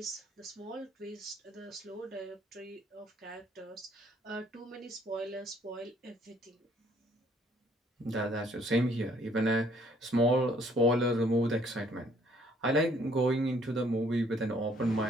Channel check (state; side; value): normal; both; correlation 0.63